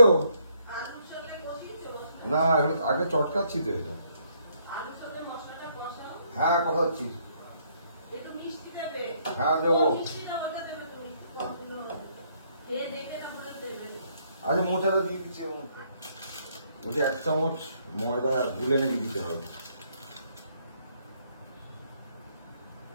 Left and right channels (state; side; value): inverted; both; correlation -0.69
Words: না আগে চটকাচ্ছি তো এটা। হ্যাঁ কষাচ্ছি। হ্যাঁ দেবো। আচ্ছা মোচাটা দিয়ে দিচ্ছি। ওটা 1 চামচ ময়দা গুলে নাকি দিতে হবে।